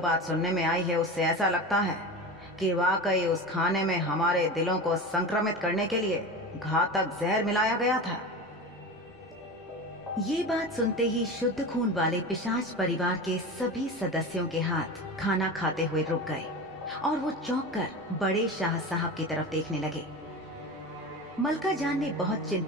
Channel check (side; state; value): both; normal; correlation 0.28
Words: सुनने में आई है उससे ऐसा लगता है कि वाकई उस खाने में हमारे दिलों को संक्रमित करने के लिए घातक जहर मिलाया गया था। ये बात सुनते ही शुद्ध खून वाले पिशाच परिवार के सभी सदस्यों के हाथ खाना खाते हुए रुक गए और वो चौंक कर बड़े शाह साहब की तरफ देखने लगे। मलका जान ने बहुत